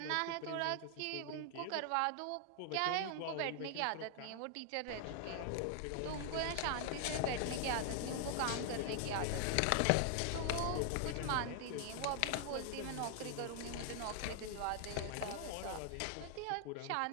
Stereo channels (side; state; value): both; different; correlation 0.00